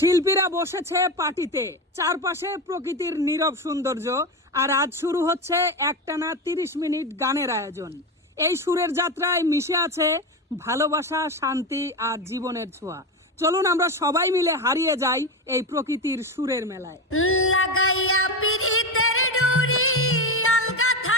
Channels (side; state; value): both; normal; correlation 0.18